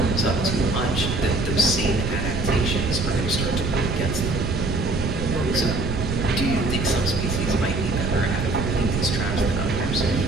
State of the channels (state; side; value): noise; right; rumble, 2 dB below the sound